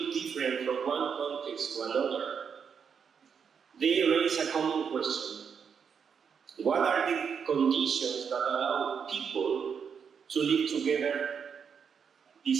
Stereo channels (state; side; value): quieter; left; 6.8 dB